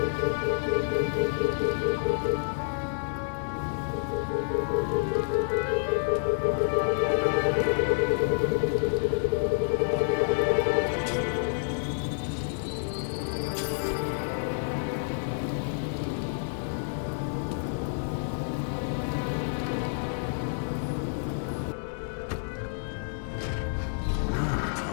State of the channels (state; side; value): silent; right; digital silence